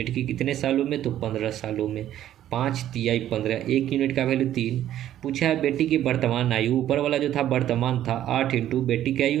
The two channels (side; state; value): left; quieter; 12.0 dB